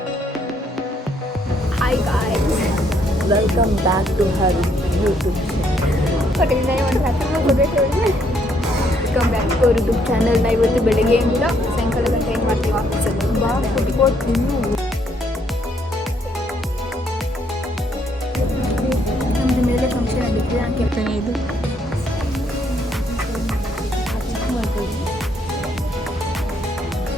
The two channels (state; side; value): normal; both; correlation 0.70